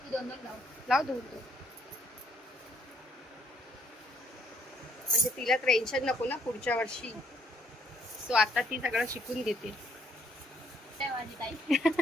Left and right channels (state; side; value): normal; both; correlation 0.67